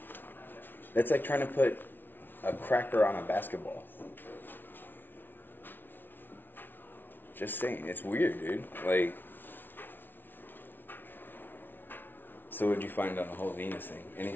That's like trying to put a cracker on a basketball. Just saying, it's weird, dude. Like, so what'd you find on the whole Venus thing?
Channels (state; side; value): late; right; 0.096 ms